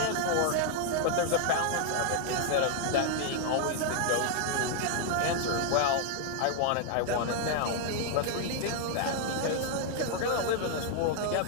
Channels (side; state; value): both; different; correlation 0.00